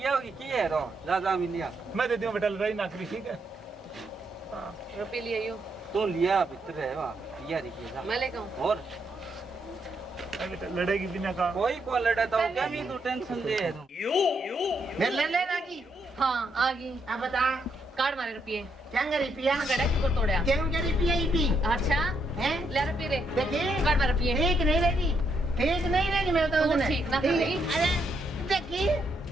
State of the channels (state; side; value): normal; both; correlation 0.77